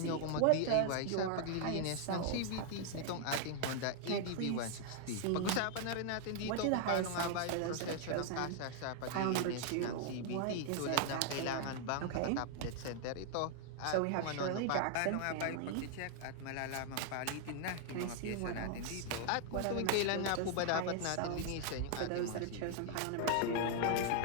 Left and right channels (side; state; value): both; different; correlation 0.00